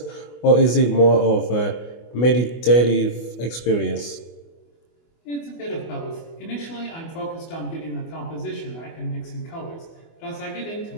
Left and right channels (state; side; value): late; right; 24 ms